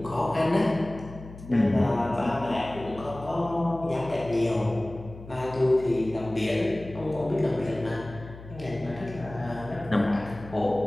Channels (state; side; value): noise; left; hum, 16 dB below the sound